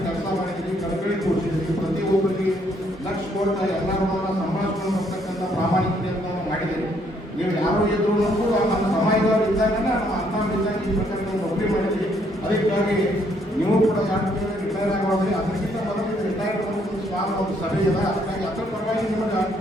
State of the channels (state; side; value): normal; both; correlation 0.69